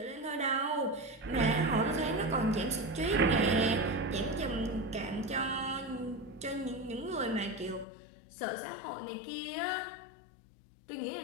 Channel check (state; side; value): drops out; right; at 7.9 s